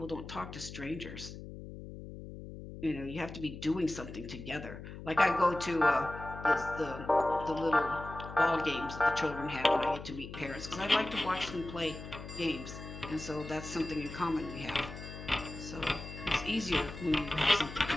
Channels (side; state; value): left; noise; hum, 11 dB below the sound